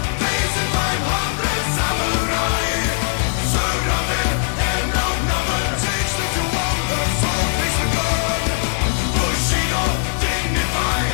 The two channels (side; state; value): right; silent; digital silence